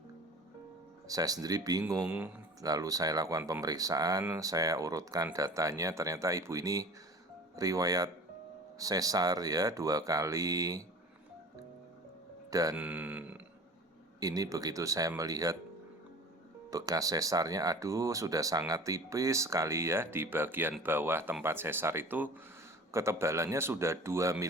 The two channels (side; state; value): both; normal; correlation 0.41